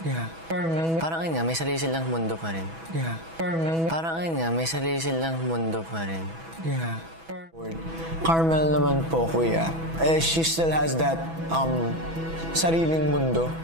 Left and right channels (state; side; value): late; left; 6.1 ms